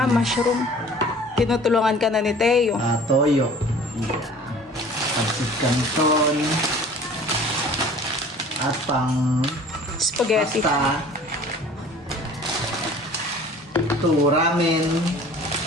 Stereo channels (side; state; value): both; normal; correlation 0.47